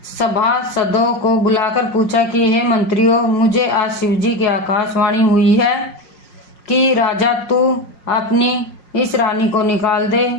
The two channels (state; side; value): late; right; 5.5 ms